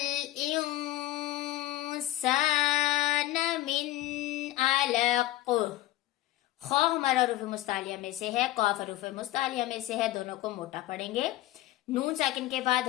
इंसान मिन अलक़। ख हमारा हरूफ मुस्तालिया में से है, कॉफ हरूफ मुस्तालिया में से है, दोनों को मोटा पढ़ेंगे। नून साकिन के बाद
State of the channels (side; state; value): right; quieter; 16.1 dB